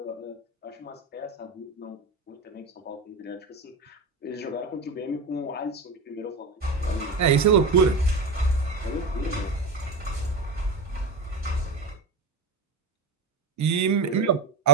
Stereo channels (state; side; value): quieter; left; 3.4 dB